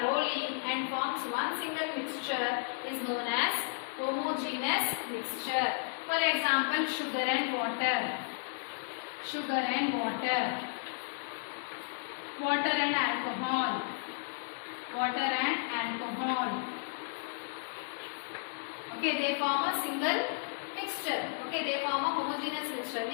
and forms one single mixture is known as homogeneous mixture. For example, sugar and water. Sugar and water. Water and alcohol. Water and alcohol. Okay, they form a single mixture. Okay, they form a homogeneous mixture.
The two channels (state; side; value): silent; right; digital silence